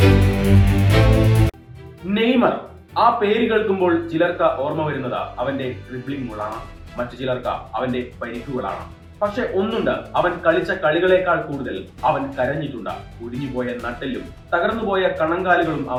നെയ്മർ. ആ പേര് കേൾക്കുമ്പോൾ ചിലർക്ക് ഓർമ്മ വരുന്നത് അവന്റെ ഡ്രിബ്ലിംഗ് ഗോളാണ്, മറ്റു ചിലർക്ക് അവന്റെ പരിക്കുകളാണ്. പക്ഷെ ഒന്നുണ്ട്, അവൻ കളിച്ച കളികളെക്കാൾ കൂടുതൽ അവൻ കരഞ്ഞിട്ടുണ്ട്. ഒടിഞ്ഞുപോയ നട്ടെല്ലും തകർന്നുപോയ കണങ്കാലുകളും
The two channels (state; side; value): identical; both; correlation 1.00